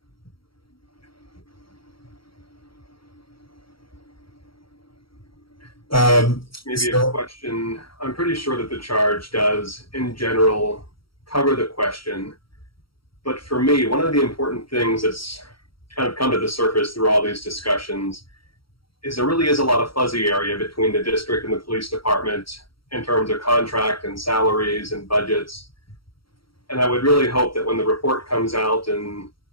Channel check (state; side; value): late; right; 0.74 ms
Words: Maybe a question. I'm pretty sure that the charge does, in general, cover the question. But for me, one of the important things that's kind of come to the surface through all these discussions is there really is a lot of fuzzy area between the district and the police department in terms of contract and salaries and budgets. And I would really hope that when the report comes out in